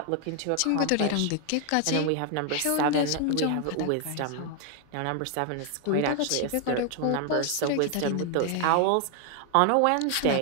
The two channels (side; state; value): both; different; correlation 0.00